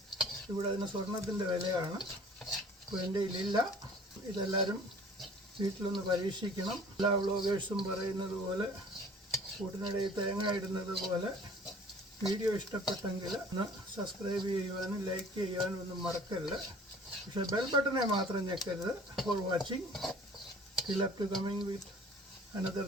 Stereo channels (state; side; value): normal; both; correlation 0.49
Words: ഇവിടെ അതിന് സ്വർണത്തിൻ്റെ വിലയാണ്. അപ്പോൾ എൻ്റെ ഇതിലില്ല. ഇതെല്ലാവരും വീട്ടിലൊന്ന് പരീക്ഷിക്കണം. എല്ലാ വ്ളോഗേഴ്സും പറയുന്നത് പോലെ, കൂട്ടിനിടയിൽ തേങ്ങ ഇടുന്നത് പോലെ, വീഡിയോ ഇഷ്ടപ്പെട്ടെങ്കിൽ ഒന്ന് സബ്സ്ക്രൈബ് ചെയ്യുവാനും ലൈക്ക് ചെയ്യുവാനും ഒന്നും മറക്കരുത്. പക്ഷേ ബെൽ ബട്ടനെ മാത്രം ഞെക്കരുത്. For watching. Till up to coming with another